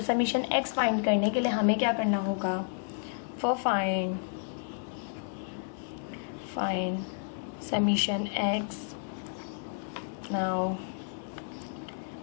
समीशन एक्स फाइंड करने के लिए हमें क्या करना होगा, for find summation x, now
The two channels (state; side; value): silent; right; digital silence